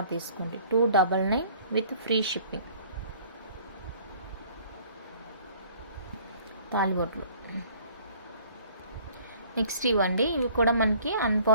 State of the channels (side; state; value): both; inverted; correlation -0.54